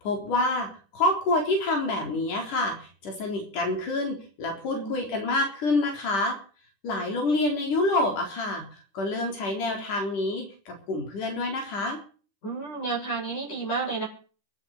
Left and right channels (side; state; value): right; late; 10 ms